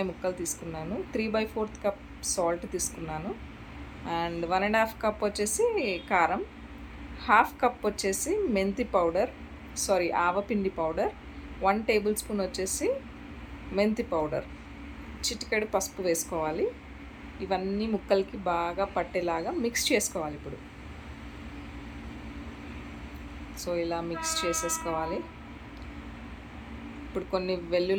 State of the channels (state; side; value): identical; both; correlation 1.00